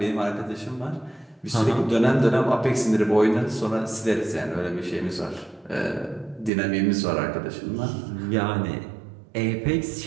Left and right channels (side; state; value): left; drops out; at 6.5 s